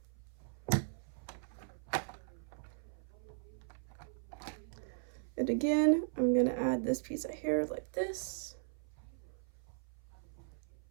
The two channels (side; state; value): left; silent; 52 dB below the other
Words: And again, I'm gonna add this piece of hair like this.